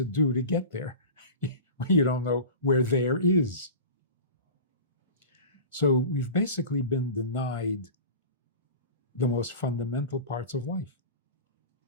do to get there? You don't know where there is. So we've basically been denied the most fundamental parts of life.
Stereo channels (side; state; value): both; inverted; correlation -0.34